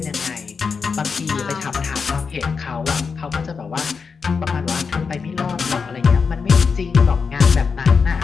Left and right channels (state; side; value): quieter; right; 5.4 dB